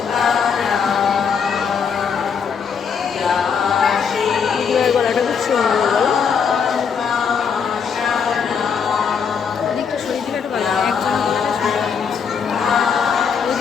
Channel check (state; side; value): quieter; right; 6.5 dB